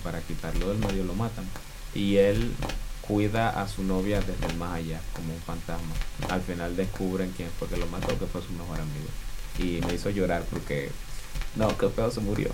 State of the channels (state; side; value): identical; both; correlation 1.00